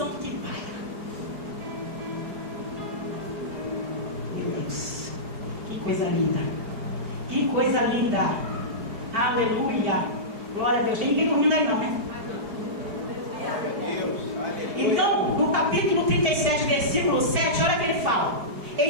que paira. Meu Deus, que coisa linda! Que coisa linda! Aleluia! Glória a Deus. Tem ninguém dormindo aí não, né? Então, no capítulo 37, versículo 7, olha o que ele fala:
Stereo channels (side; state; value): left; late; 4.8 ms